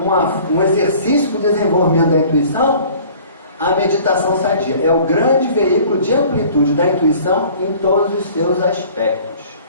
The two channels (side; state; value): both; inverted; correlation -0.50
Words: exercício para o desenvolvimento da intuição, a meditação sadia. É o grande veículo de amplitude da intuição em todos os seus aspectos.